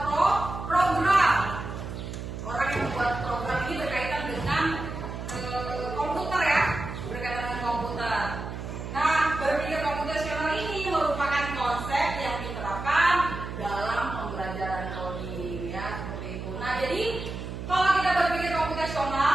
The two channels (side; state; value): right; noise; hum, 7 dB below the sound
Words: program. Orang yang membuat program ini berkaitan dengan komputer ya, berkaitan dengan komputer. Nah, berpikir komputasional ini merupakan konsep yang diterapkan dalam pembelajaran coding ya, seperti itu. Nah, jadi kalau kita berpikir